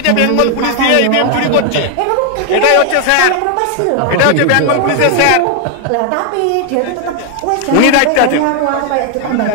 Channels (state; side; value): different; both; correlation 0.00